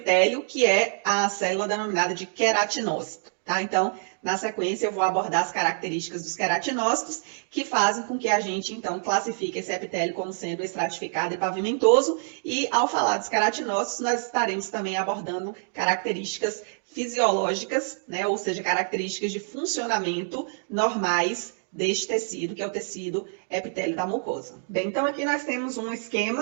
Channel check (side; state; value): left; silent; digital silence